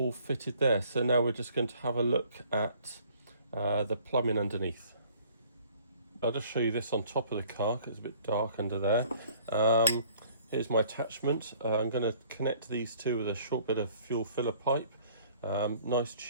fitted there. So now we're just going to have a look at the plumbing underneath. I'll just show you this on top of the car because it's a bit dark under there. Here's my attachment. I'm going to connect these two with a short bit of fuel filler pipe. Nice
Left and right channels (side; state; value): both; inverted; correlation -0.55